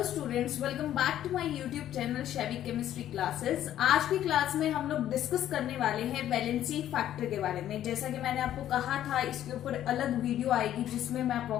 students, welcome back to my YouTube channel Shaivi chemistry classes. आज की class में हम लोग डिस्कस करने वाले हैं वैलेंसी फैक्टर के बारे में। जैसा कि मैंने आपको कहा था, इसके ऊपर अलग वीडियो आएगी जिसमें मैं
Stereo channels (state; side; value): quieter; right; 11.8 dB